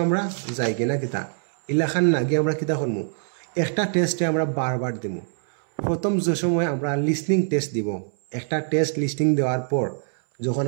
আমরা যাই কিনা কিতা ইলাখান না গিয়ে আমরা কিতা করবো, একটা টেস্টে আমরা বারবার দিব। প্রথম যে সময় আমরা লিসনিং টেস্ট দিব, একটা টেস্ট লিসনিং দেওয়ার পর যখন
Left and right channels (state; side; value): silent; left; 63 dB below the other